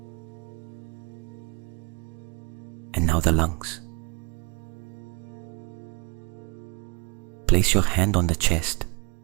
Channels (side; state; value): left; quieter; 30.3 dB